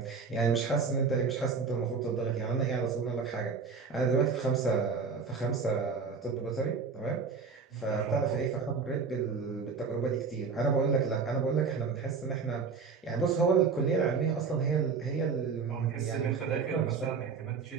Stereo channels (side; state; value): left; quieter; 5.3 dB